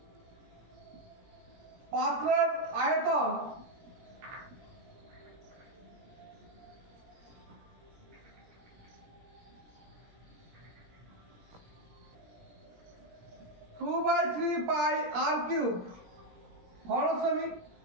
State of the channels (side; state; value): left; late; 17 ms